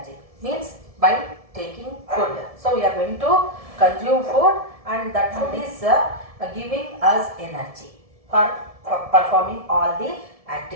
Means by taking food. So, we are going to consume food, and that food is giving us energy for performing all the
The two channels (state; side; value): late; left; 1.7 ms